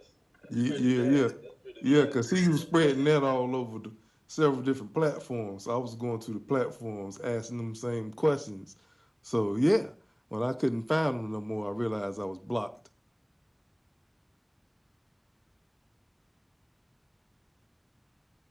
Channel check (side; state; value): both; identical; correlation 1.00